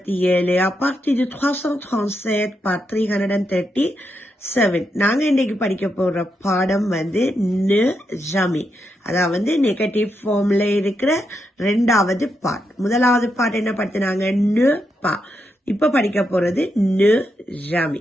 à partir de 337 par 337. நாங்க இன்னைக்கு படிக்க போற பாடம் ந ஜமி, அதாவது நெகட்டிவ் ஃபார்ம்ல இருக்கிற ரெண்டாவது பார்ட். முதலாவது பார்ட் என்ன படுத்தினாங்க? ந பா. இப்ப படிக்க போறது ந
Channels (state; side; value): normal; both; correlation 0.83